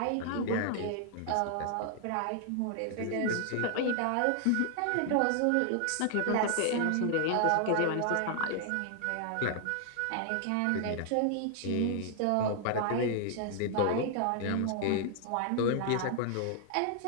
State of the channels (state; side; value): different; both; correlation 0.00